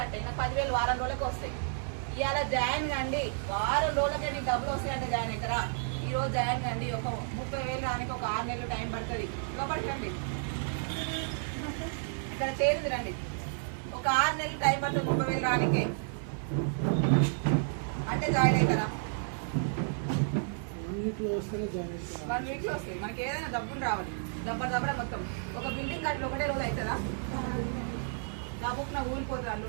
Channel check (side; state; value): left; silent; 57 dB below the other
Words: నాకు 10,000 వారం రోజులకి వస్తాయి. ఇవాళ జాయిన్ కండి, వారం రోజులకే నీకు డబ్బులు వస్తాయంటే జాయిన్ అవుతారా? ఈ రోజు జాయిన్ కండి, ఒక 30,000 రానికి ఒక 6 నెలలు టైం పడుతుంది. లోపలికి రండి, ఇక్కడ చేరింది రండి. ఒక 6 నెలలు టైం పడుతుంది 30,000 రానికి అంటే జాయిన్ అవుతారా? 1 వీక్లో వస్తేనే జాయిన్ అవుతారు. 1 వీక్లో వస్తాయి. మనకి ఏదైనా డబ్బులు రావాలి. దబ్బర మొత్తం ఒక బిల్డింగ్ కట్టి ఒకటే రోజు అవుతుందా? డబ్బుకు నా ఊరిపోతుంది, అల్లు